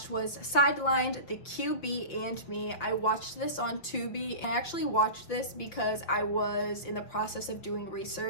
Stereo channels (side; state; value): right; late; 5.9 ms